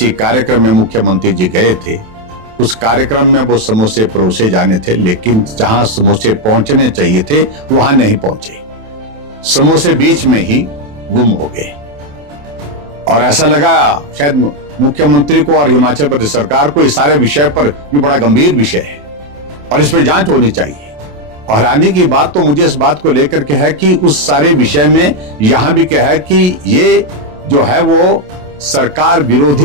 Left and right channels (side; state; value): left; late; 27 ms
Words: कार्यक्रम में मुख्यमंत्री जी गए थे, उस कार्यक्रम में वो समोसे परोसे जाने थे, लेकिन जहां समोसे पहुंचने चाहिए थे वहां नहीं पहुंचे, समोसे बीच में ही गुम हो गए। और ऐसा लगा शायद मुख्यमंत्री को और हिमाचल प्रदेश सरकार को इस सारे विषय पर ये बड़ा गंभीर विषय है और इस पर जांच होनी चाहिए। और हैरानी की बात तो मुझे इस बात को लेकर के है कि उस सारे विषय में यहां भी क्या है कि ये जो है वो सरकार